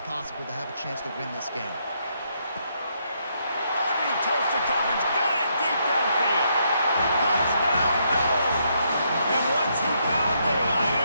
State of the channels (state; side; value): inverted; both; correlation -0.75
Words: possible to have a chance to win this game. Underneath Tulsa coverage, got it deep downfield. Touchdown, no! And once he found daylight,